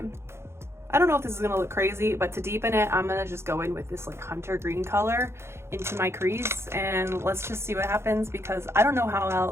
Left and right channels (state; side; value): late; left; 0.12 ms